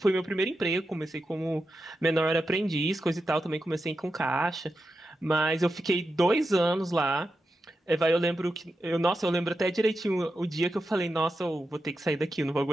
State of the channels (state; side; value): normal; both; correlation 0.89